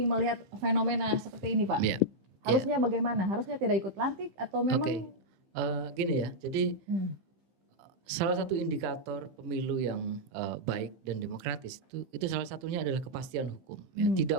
melihat fenomena seperti ini, Pak? Harusnya bagaimana? Harusnya tidak ikut lantik atau memang? Gini ya. Jadi salah satu indikator pemilu yang baik dan demokratis itu salah satunya adalah kepastian hukum. Ya.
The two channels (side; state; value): left; late; 15 ms